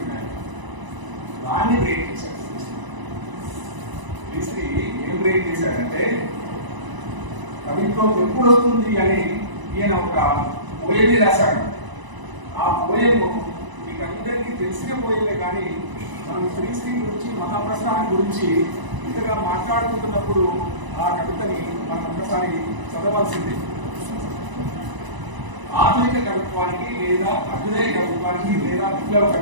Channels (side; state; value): left; late; 1.0 ms